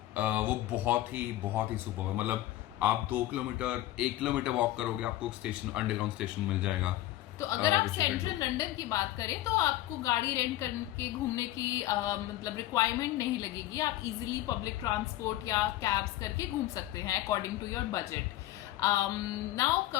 वो बहुत ही सुपर है। मतलब आप 1 किलोमीटर वॉक करोगे, आपको स्टेशन, अंडरग्राउंड स्टेशन मिल जाएगा। तो अगर आप सेंट्रल लंदन की बात करें तो आपको गाड़ी रेंट करके घूमने की मतलब रिक्वायरमेंट नहीं लगेगी, आप इजीली पब्लिक ट्रांसपोर्ट या कैब्स करके घूम सकते हैं according to your budget. Now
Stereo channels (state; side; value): quieter; right; 15.1 dB